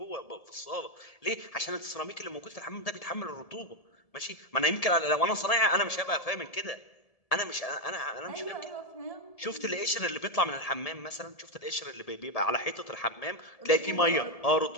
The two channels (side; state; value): right; late; 1.7 ms